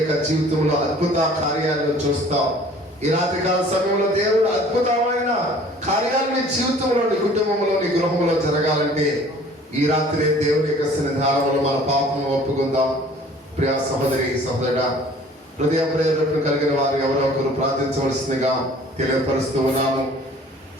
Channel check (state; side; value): normal; both; correlation 0.51